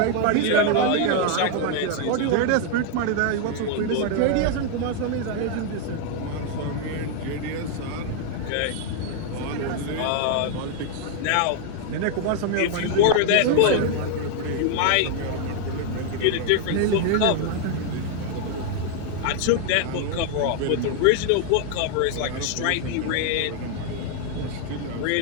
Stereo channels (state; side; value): different; both; correlation 0.00